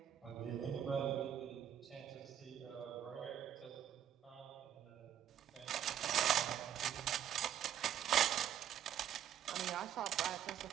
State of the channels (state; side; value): quieter; left; 9.9 dB